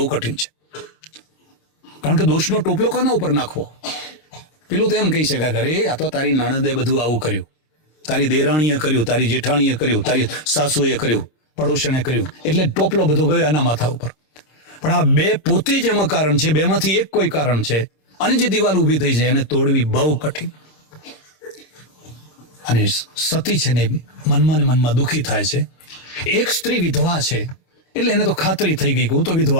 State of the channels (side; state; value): right; late; 26 ms